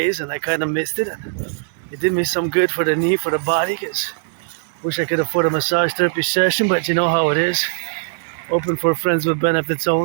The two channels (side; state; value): left; silent; 66 dB below the other